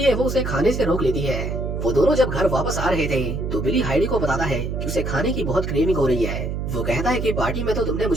वो उसे खाने से रोक लेती है। वो दोनों जब घर वापस आ रहे थे तो बिली हाइडी को बताता है कि उसे खाने की बहुत क्रेविंग हो रही है। वो कहता है कि पार्टी में तो तुमने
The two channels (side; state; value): right; noise; hum, 3 dB below the sound